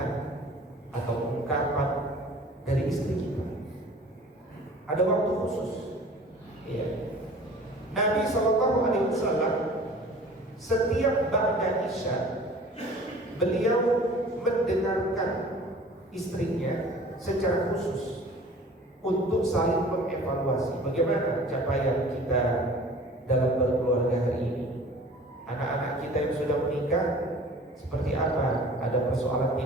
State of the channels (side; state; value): both; normal; correlation 0.46